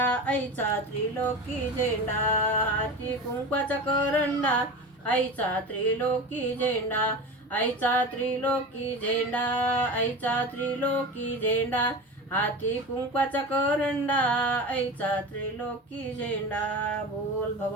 आईचा त्रिलोकी झेंडा, हाती कुंकवाचा करंडा आईचा त्रिलोकी झेंडा, आईचा त्रिलोकी झेंडा आईचा त्रिलोकी झेंडा. हाती कुंकवाचा करंडा आईचा त्रिलोकी झेंडा. बोल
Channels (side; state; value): both; normal; correlation 0.29